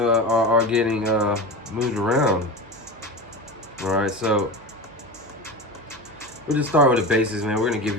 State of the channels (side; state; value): right; noise; hum, 24 dB below the sound